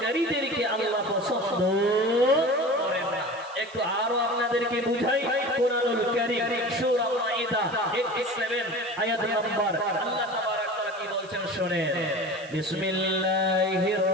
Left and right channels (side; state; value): right; noise; hiss, 23 dB below the sound